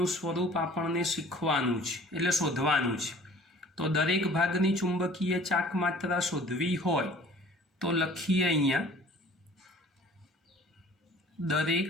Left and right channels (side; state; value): both; normal; correlation 0.49